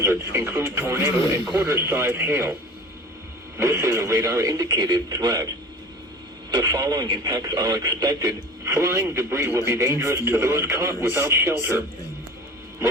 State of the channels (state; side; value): normal; both; correlation 0.40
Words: include tornado and quarter-size hail. This is a radar-indicated threat. The following impacts are expected. Flying debris will be dangerous to those caught without shelter.